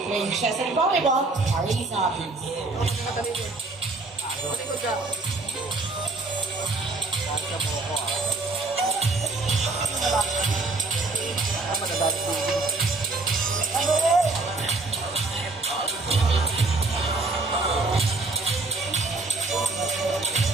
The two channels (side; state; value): left; quieter; 3.4 dB